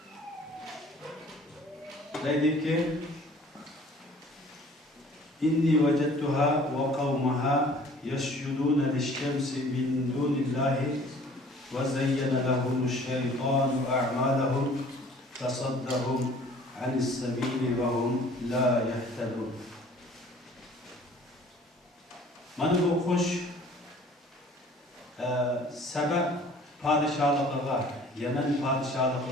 deydiki inni vajadtuha ve qavmaha yasjuduna liş-şemsi min dunillahi ve zeyyana lahumuş-şeytanu a'malahum fasaddahum anis-sabili ve hum la yehtedun. Mana bu kuş sebep padişahlığa, Yemen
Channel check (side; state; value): both; normal; correlation 0.52